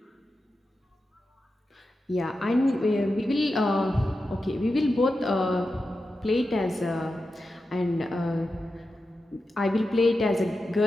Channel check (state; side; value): normal; both; correlation 0.91